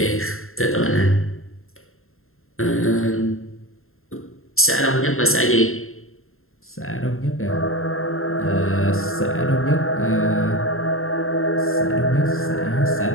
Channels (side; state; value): right; late; 0.61 ms